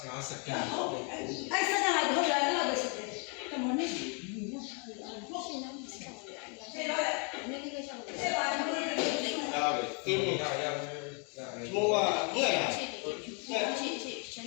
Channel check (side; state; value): right; quieter; 37.7 dB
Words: စက္ကန့် ဟုတ်တယ်အဲ့စကားလိုက်ဟုတ်တယ်အဲ့လိုပဲရှိတယ်တမနစ်ဒီညော ရှင်းနေပြီဆက်ပါလေ ဆေးတော့ နည်းနည်းရှောင်းတယ် ဆေးပါတော့ ဒါပဲကင်းနေတာရမိုးကငဲ့လာ ရှင်းရှင်း